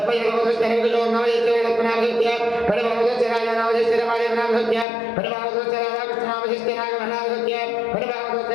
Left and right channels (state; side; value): drops out; right; at 4.9 s